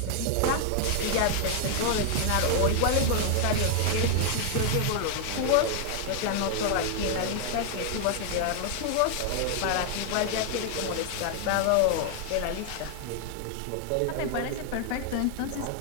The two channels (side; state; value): both; different; correlation 0.00